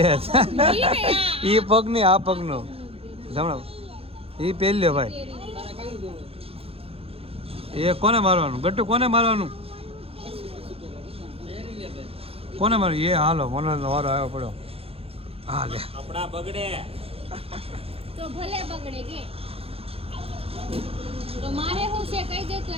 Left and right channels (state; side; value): late; left; 0.28 ms